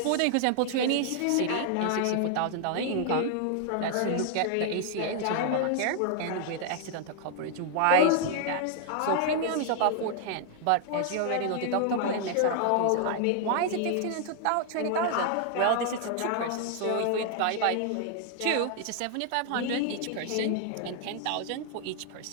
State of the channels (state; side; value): different; both; correlation 0.00